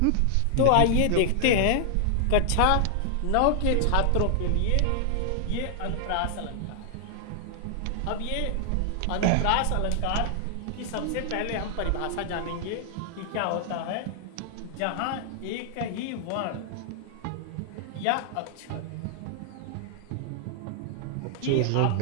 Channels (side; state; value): both; different; correlation 0.00